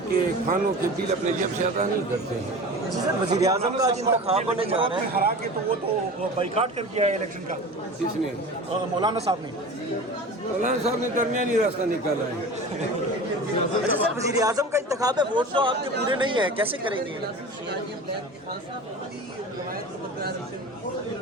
کے کھانوں کے بل اپنے جیب سے ادا نہیں کرتے ہیں۔ وزیر اعظم کا آج انتخاب ہونے جا رہا ہے، ہرا کے تو وہ تو بائیکاٹ کر دیا ہے الیکشن کا کس نے؟ مولانا صاحب نے۔ مولانا صاحب نے درمیانی راستہ نکالا ہے۔ اچھا سر، وزیر اعظم کا انتخاب ہے، ووٹ تو آپ کے پورے نہیں ہیں، کیسے کریں گے؟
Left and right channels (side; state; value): both; normal; correlation 0.35